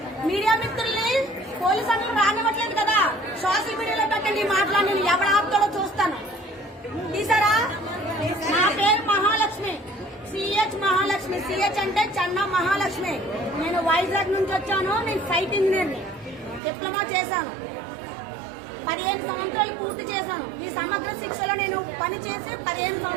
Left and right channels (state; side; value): drops out; left; at 16.6 s